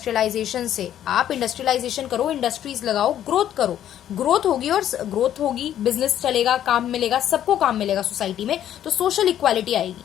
से। आप इंडस्ट्रियलाइजेशन करो, इंडस्ट्रीज लगाओ, ग्रोथ करो, ग्रोथ होगी, और ग्रोथ होगी, बिजनेस चलेगा, काम मिलेगा, सबको काम मिलेगा सोसाइटी में, तो सोशल इक्वालिटी आएगी।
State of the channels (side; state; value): right; quieter; 11.0 dB